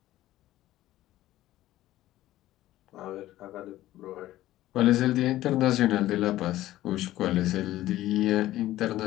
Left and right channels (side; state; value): right; quieter; 14.9 dB